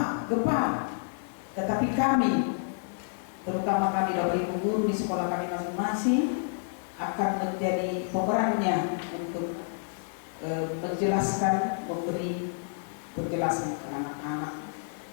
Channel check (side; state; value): right; silent; digital silence